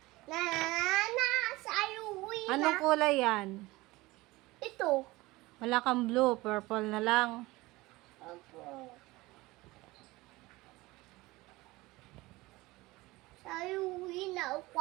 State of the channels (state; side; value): quieter; left; 20.4 dB